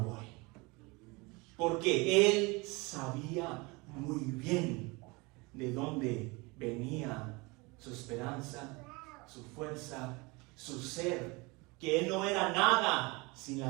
voy. Porque él sabía muy bien de dónde venía su esperanza, su fuerza, su ser, que él no era nada sin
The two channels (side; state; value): left; quieter; 25.8 dB